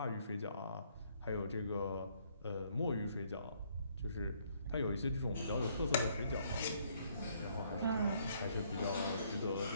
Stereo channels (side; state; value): both; inverted; correlation -0.67